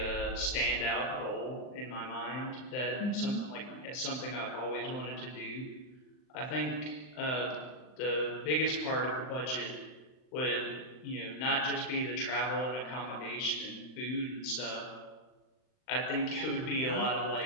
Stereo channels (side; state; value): right; late; 39 ms